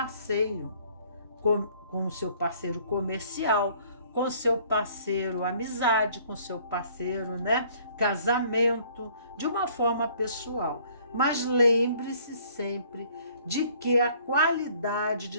com o seu parceiro comercial, com o seu parceiro amizade, com o seu parceiro, né, casamento, de uma forma pessoal. Mas lembre-se sempre de que a qualidade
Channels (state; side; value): inverted; both; correlation -0.58